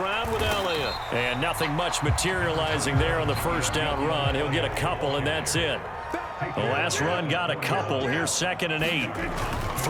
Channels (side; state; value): both; identical; correlation 1.00